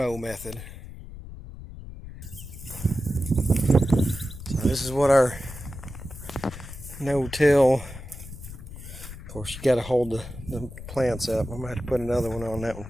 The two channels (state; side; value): noise; left; rumble, 13 dB below the sound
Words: method. So this is what our no-till. Of course, you got to hold the plants up. I'm going to have to put another one on that one